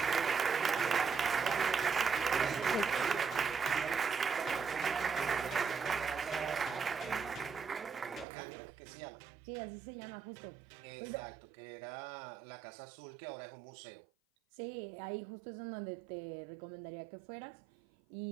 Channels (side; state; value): left; drops out; at 8.2 s